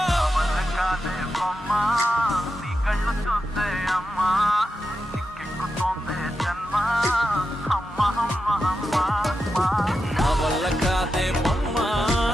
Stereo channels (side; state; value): both; normal; correlation 0.89